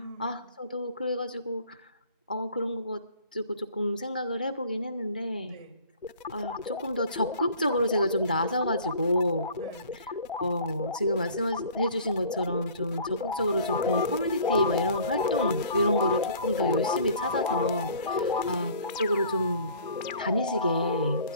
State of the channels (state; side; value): inverted; both; correlation -0.49